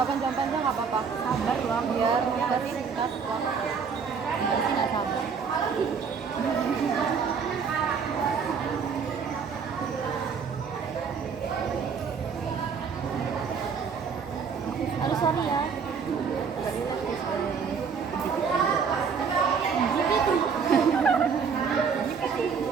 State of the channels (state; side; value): quieter; left; 6.0 dB